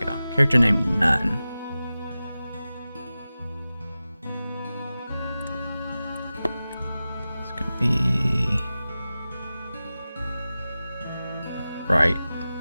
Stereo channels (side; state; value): both; inverted; correlation -0.95